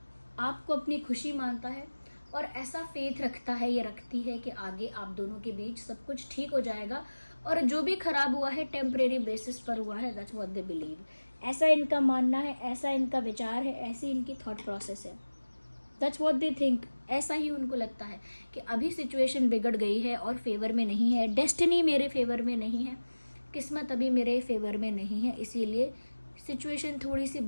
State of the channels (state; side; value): inverted; both; correlation -1.00